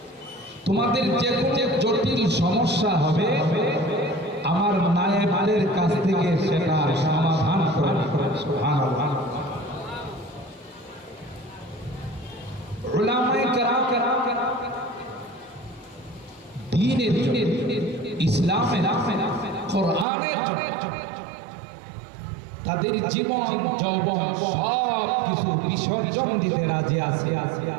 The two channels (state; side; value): drops out; left; at 20.1 s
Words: তোমাদের যে কোনো জটিল সমস্যা হবে, আমার নায়েবের কাছ থেকে সেটা সমাধান করে। সুবহানাল্লাহ। উলামায়ে কেরাম দ্বীনের, ইসলামের, কোরআনের তাদের জীবন যৌবন সব কিছু বিসর্জন দিতে রাজি আছে,